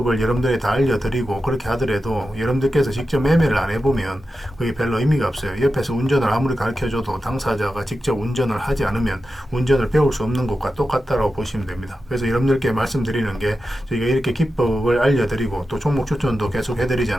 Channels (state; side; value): normal; both; correlation 0.91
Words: 여러분들이 다 알려드리고 그렇게 하더라도 여러분들께서 직접 매매를 안 해보면 그게 별로 의미가 없어요. 옆에서 운전을 아무리 가르쳐줘도 당사자가 직접 운전을 하지 않으면 운전을 배울 수 없는 것과 똑같다라고 보시면 됩니다. 그래서 여러분들께 말씀드리는 게, 저희가 이렇게 기법을 알려드리고 또 종목 추천도 계속